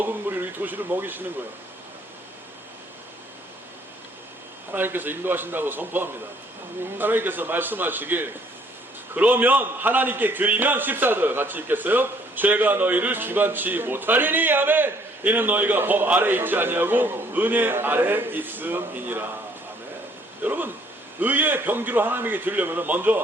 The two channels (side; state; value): both; normal; correlation 0.63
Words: 무리로 이 도시를 먹이시는 거예요. 하나님께서 인도하신다고 선포합니다. 아멘. 하나님께서 말씀하시길, 그러면 하나님께 드리면 14절 같이 읽겠어요? 죄가 너희를 주관치 못하리니. 아멘. 이는 너희가 법 아래 있지 아니하고 은혜 아래 있음이니라. 아멘. 여러분, 의의 병기로 하나님에게 드리려면